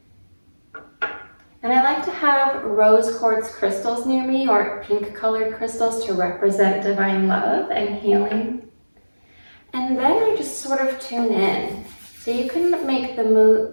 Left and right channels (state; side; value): inverted; both; correlation -1.00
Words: And I like to have rose quartz crystals near me, or pink colored crystals to represent divine love and healing. And then I just sort of tune in. So you can make the